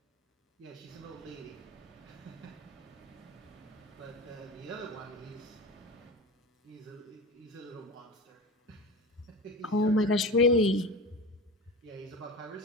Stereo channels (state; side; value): normal; both; correlation 0.31